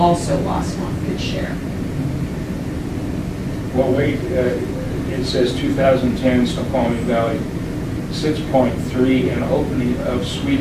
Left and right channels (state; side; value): identical; both; correlation 1.00